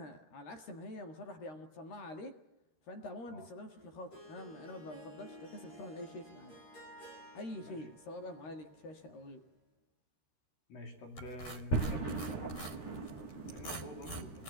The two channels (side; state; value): right; late; 13 ms